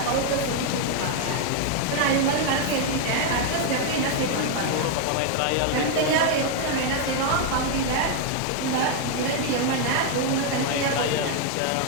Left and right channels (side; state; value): both; different; correlation 0.01